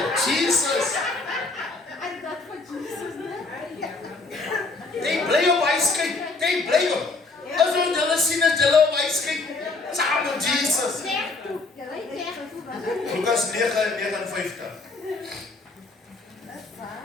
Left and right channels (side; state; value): right; quieter; 3.6 dB